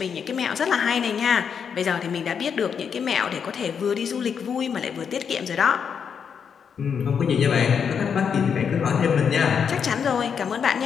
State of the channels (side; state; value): right; quieter; 7.0 dB